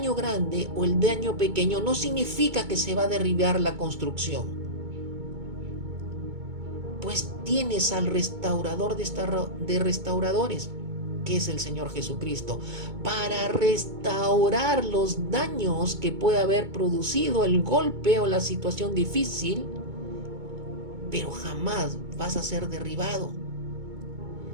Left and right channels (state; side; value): late; left; 2.2 ms